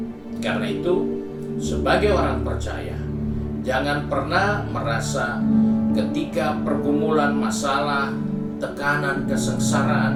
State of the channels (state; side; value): identical; both; correlation 1.00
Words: Karena itu, sebagai orang percaya, jangan pernah merasa ketika pergumulan masalah, tekanan,